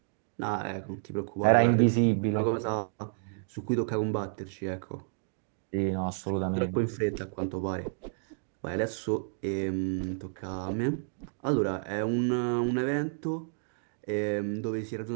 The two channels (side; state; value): left; silent; digital silence